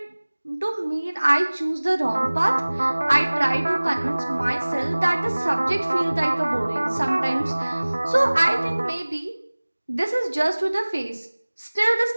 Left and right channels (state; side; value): inverted; both; correlation -1.00